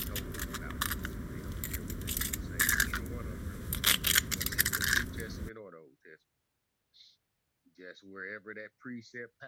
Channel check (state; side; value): identical; both; correlation 1.00